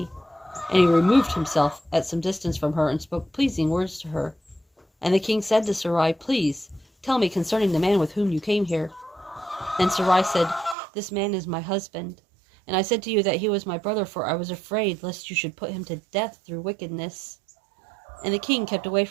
And he removed himself at some distance from her, and spoke pleasing words to her. And the king said to Sarai, Please, tell me concerning the man with whom you came here. And Sarai said, This man is my husband. And I said to you that he was my brother, for I was afraid lest you should put him to death through wickedness. And the king kept away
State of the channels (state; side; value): drops out; left; at 10.8 s